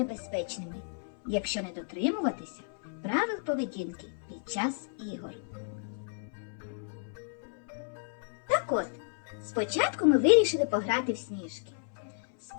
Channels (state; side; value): silent; right; 56 dB below the other